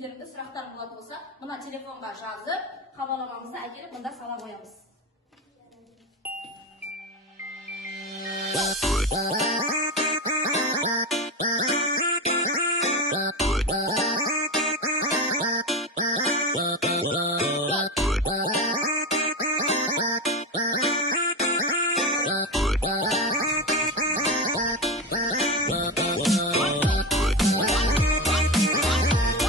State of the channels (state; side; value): normal; both; correlation 0.20